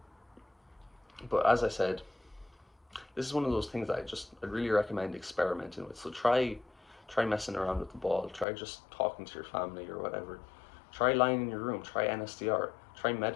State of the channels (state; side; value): drops out; right; at 8.5 s